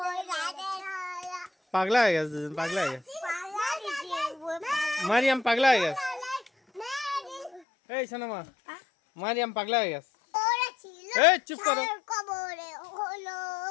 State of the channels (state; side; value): drops out; right; at 7.6 s